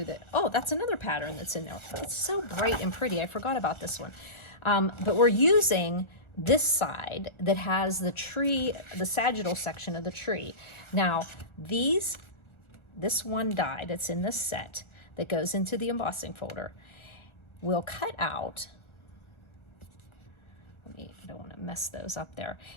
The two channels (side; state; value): right; late; 1.4 ms